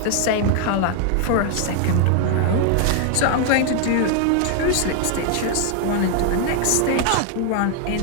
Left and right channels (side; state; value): both; different; correlation 0.00